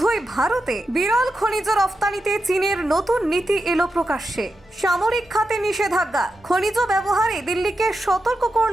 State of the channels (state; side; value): normal; both; correlation 0.88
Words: ভারতে বিরল খনিজ রফতানিতে চীনের নতুন নীতি এলো প্রকাশ্যে। সামরিক খাতে নিষেধাজ্ঞা, খনিজ ব্যবহারে দিল্লিকে সতর্ক